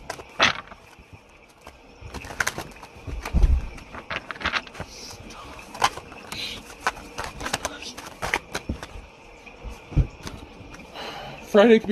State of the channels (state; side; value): identical; both; correlation 1.00